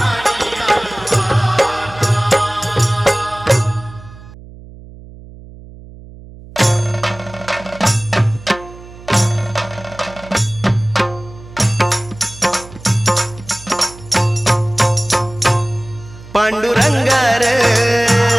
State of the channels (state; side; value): noise; right; hum, 18 dB below the sound